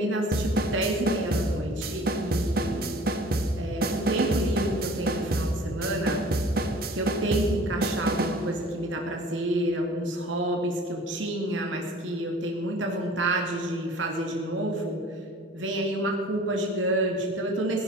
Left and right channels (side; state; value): both; normal; correlation 0.47